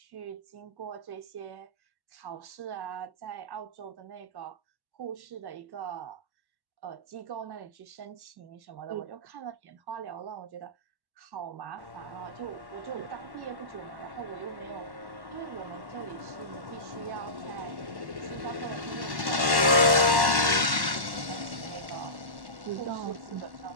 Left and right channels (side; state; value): left; late; 1.1 ms